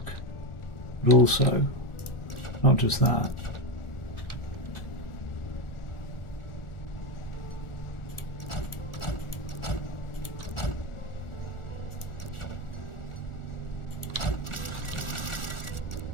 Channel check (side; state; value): right; late; 1.4 ms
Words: but also not just that.